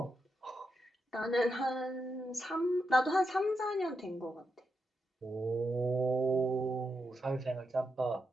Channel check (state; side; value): normal; both; correlation 0.85